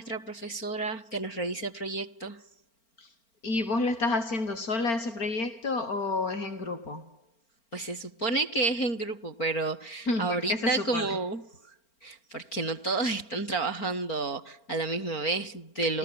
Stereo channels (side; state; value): right; late; 4.4 ms